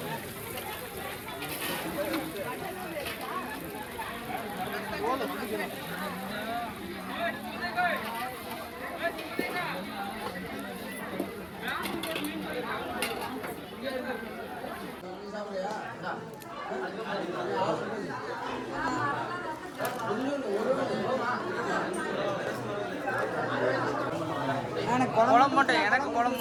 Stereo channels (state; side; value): identical; both; correlation 1.00